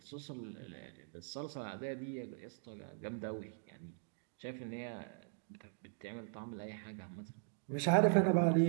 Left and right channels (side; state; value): left; silent; digital silence